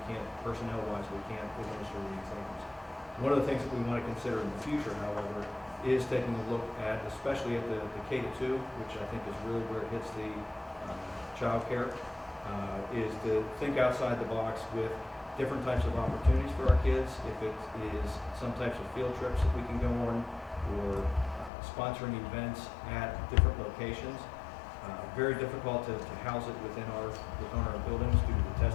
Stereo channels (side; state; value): right; drops out; at 21.5 s